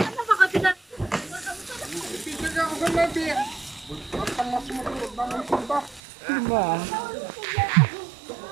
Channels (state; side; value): drops out; left; at 6.0 s